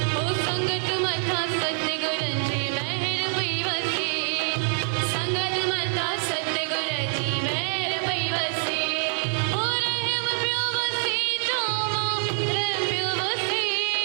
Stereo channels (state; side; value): silent; left; digital silence